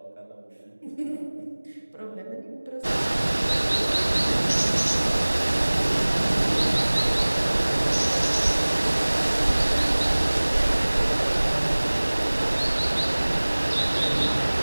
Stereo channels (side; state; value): both; inverted; correlation -1.00